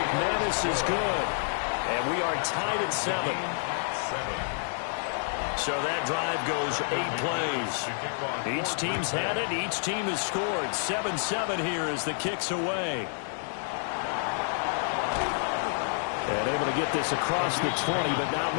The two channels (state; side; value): silent; right; digital silence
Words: is good. And we are tied at 7. So that drive goes 8 plays. Each team's had it. Each team has scored. 7-7 here as the kick's away. And able to get this across the 20, but not